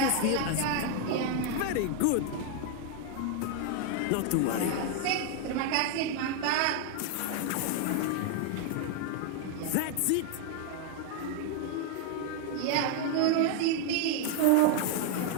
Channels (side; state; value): both; different; correlation 0.00